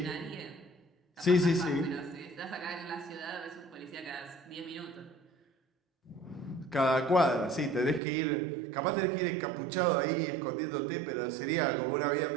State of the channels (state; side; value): drops out; left; at 8.0 s